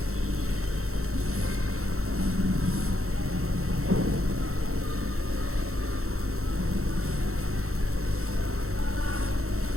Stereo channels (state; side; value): late; left; 0.63 ms